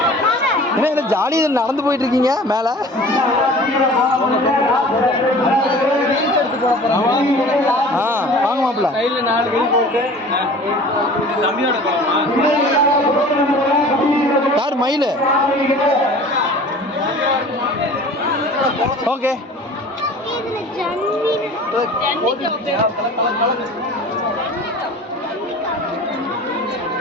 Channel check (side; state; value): both; normal; correlation 0.43